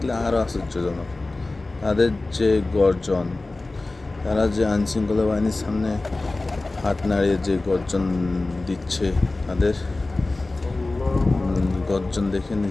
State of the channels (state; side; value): quieter; right; 3.1 dB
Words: আরও আশ্চর্যজনক। তাদের যে গর্জন, তারা যে আইনশৃঙ্খলা বাহিনীর সামনে হাত নাড়িয়ে যে গর্জন দিচ্ছে, তাদের গর্জন দেখে